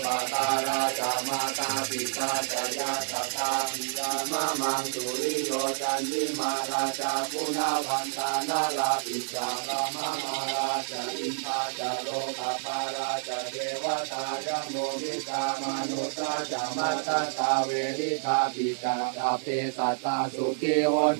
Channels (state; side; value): silent; left; 55 dB below the other